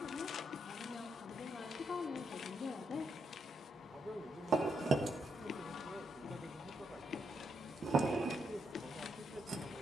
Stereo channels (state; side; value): normal; both; correlation 0.80